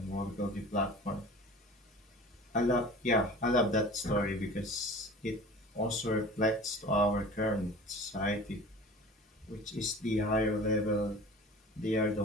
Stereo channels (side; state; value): both; normal; correlation 0.40